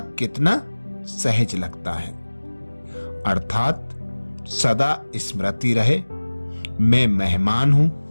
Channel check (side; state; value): both; inverted; correlation -1.00